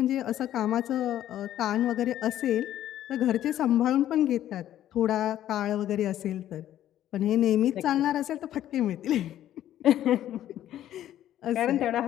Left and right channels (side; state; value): right; quieter; 12.1 dB